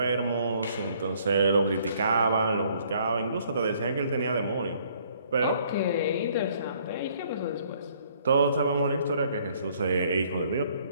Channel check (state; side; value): inverted; both; correlation -0.63